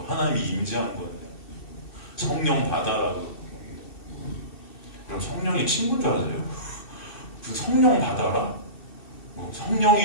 하나님이 임재한 거예요. 성령 받아라도. 그럼 성령이 친구인 줄 아세요? 그 성령 받아라? 뭐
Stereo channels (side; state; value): right; late; 2.7 ms